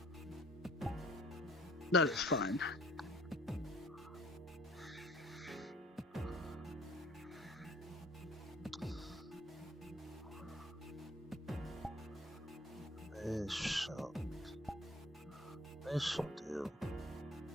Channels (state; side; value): normal; both; correlation 0.54